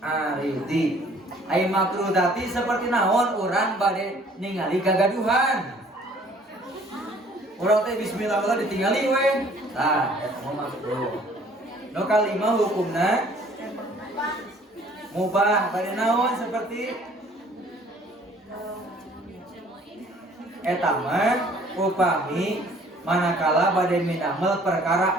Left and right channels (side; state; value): both; normal; correlation 0.56